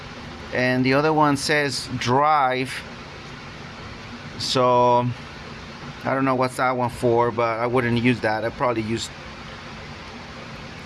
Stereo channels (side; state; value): both; identical; correlation 1.00